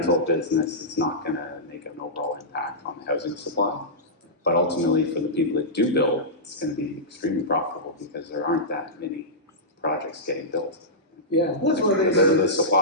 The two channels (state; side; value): normal; both; correlation -0.14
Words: business, it's not going to make an overall impact on the housing supply. But ultimately, for the people that do build, it's going to be extremely profitable because there aren't that many projects getting built. yeah, that's one of the things. The